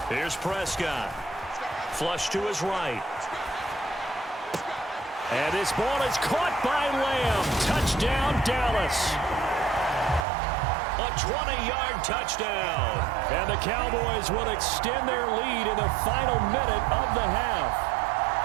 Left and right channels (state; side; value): drops out; left; at 10.2 s